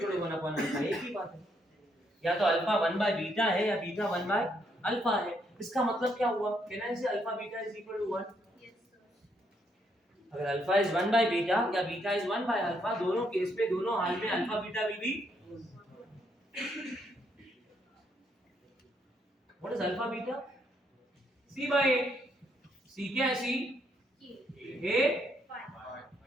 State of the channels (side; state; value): both; normal; correlation 0.74